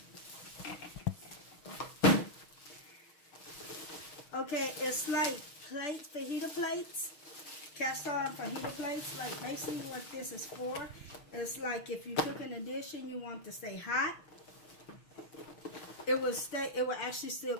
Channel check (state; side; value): late; right; 6.3 ms